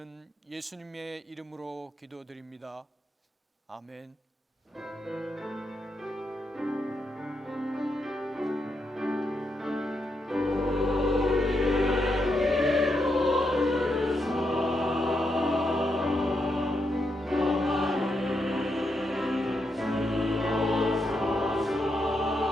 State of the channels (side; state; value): both; normal; correlation 0.82